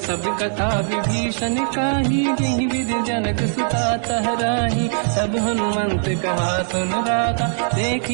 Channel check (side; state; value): left; silent; digital silence